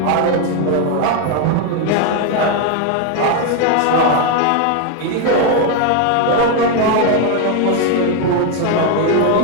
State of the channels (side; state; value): both; different; correlation 0.01